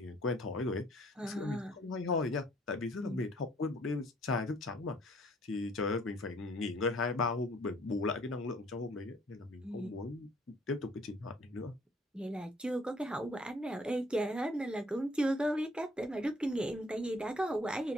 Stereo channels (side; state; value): both; normal; correlation 0.60